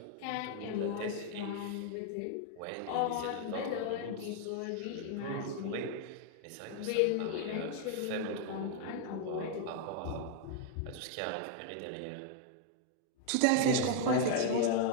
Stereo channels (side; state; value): both; different; correlation 0.00